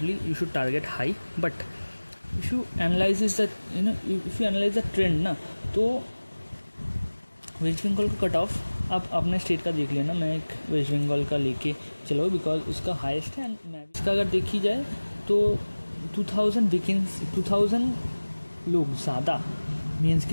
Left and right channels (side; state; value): both; inverted; correlation -1.00